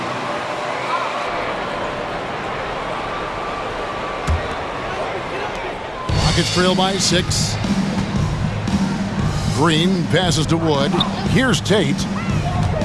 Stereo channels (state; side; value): identical; both; correlation 1.00